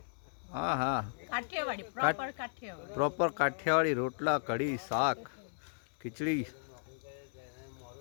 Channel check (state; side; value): silent; right; digital silence